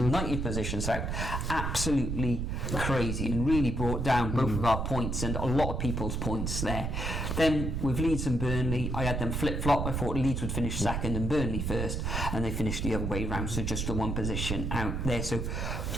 positions out, absolutely crazy, and really brought down both of our points and a lot of people's points there. Then with Leeds and Burnley, I had them flip-flop. I thought Leeds would finish second and Burnley first, and they finished the other way around, so just the 1 position out there. So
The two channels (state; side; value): noise; right; rumble, 1 dB below the sound